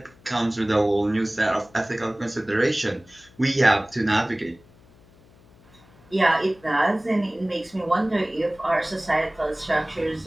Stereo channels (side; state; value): left; noise; hum, 27 dB below the sound